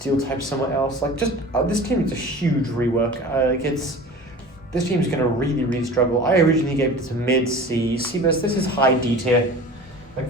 type somewhere else. Like, just this team needs a huge rework. This team's gonna really struggle. I originally gave it to mid C. Sebas, this is high D tier. Like,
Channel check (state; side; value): normal; both; correlation 0.39